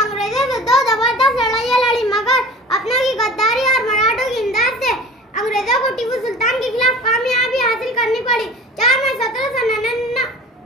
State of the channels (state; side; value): normal; both; correlation 0.40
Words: से 2 जबरदस्त लड़ाइयाँ लड़ी, मगर अपनों की गद्दारी और मराठों की इमदाद से अंग्रेजों को टीपू सुल्तान के खिलाफ कामयाबी हासिल करनी पड़ी। 4 मई